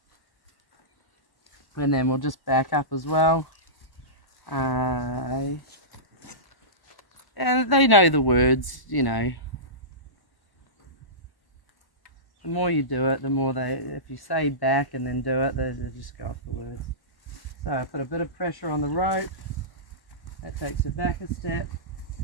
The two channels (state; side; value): late; right; 1.1 ms